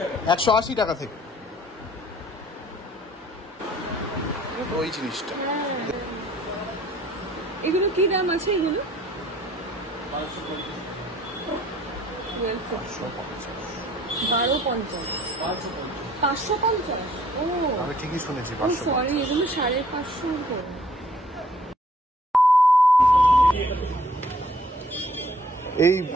180 টাকা থেকে ওই জিনিসটা। এগুলো কি দাম আছে? এগুলো 550। ও, আমি ঠিকই শুনেছি, সরি, এগুলো 550 করে। এই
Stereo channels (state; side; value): normal; both; correlation 0.59